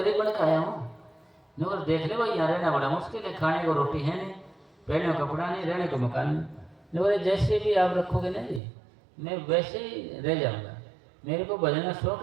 बन के आया हूँ। नौकर देख ले भाई, यहाँ रहना बड़ा मुश्किल है, खाने को रोटी है नहीं, पहनने को कपड़ा नहीं, रहने को मकान नहीं। नौकर जैसे भी आप रखोगे ना जी, मैं वैसे ही रह जाऊँगा। मेरे को भजन का शौक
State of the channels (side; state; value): left; drops out; at 8.6 s